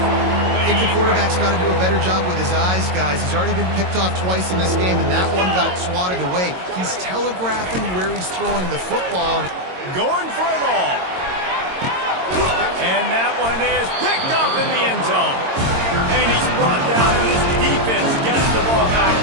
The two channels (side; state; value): left; late; 22 ms